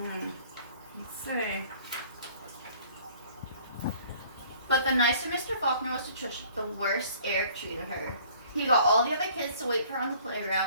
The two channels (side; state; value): both; inverted; correlation -0.54